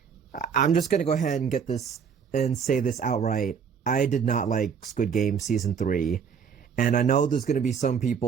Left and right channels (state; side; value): quieter; left; 6.9 dB